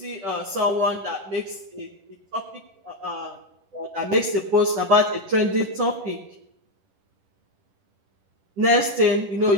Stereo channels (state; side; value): late; left; 10 ms